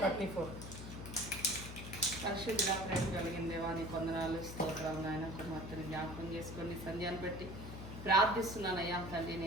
పరిశుద్ధ ప్రేమ కలిగిన దేవాన్ని కొందనాలు స్తోత్రం. నాయన కుమార్తెని జ్ఞాపకం చేసుకొని సంధ్యాన్ని బట్టి ప్రార్థిస్తున్నాను. అయ్యా తండ్రి,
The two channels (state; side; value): noise; left; hum, 9 dB below the sound